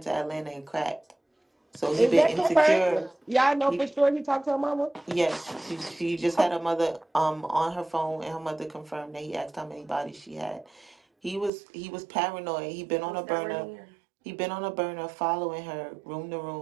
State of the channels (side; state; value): left; drops out; at 11.5 s